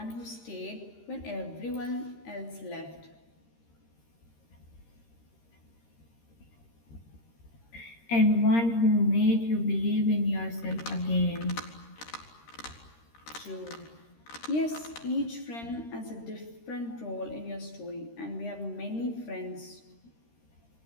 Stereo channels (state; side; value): late; right; 13 ms